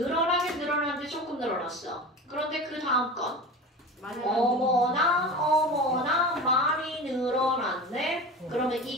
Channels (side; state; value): both; normal; correlation 0.31